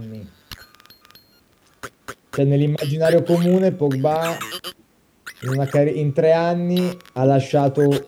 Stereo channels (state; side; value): identical; both; correlation 1.00